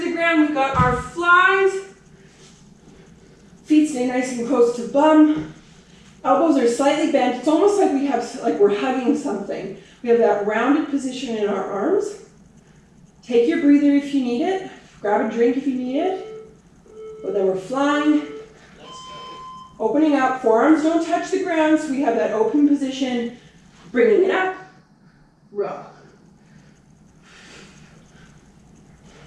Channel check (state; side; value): identical; both; correlation 1.00